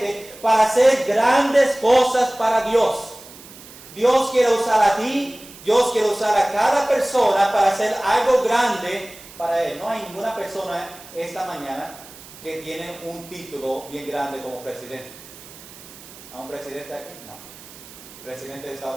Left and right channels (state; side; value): noise; right; hiss, 19 dB below the sound